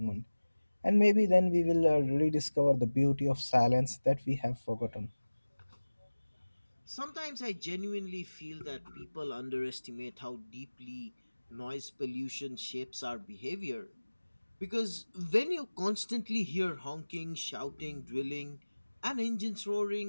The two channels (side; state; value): both; inverted; correlation -1.00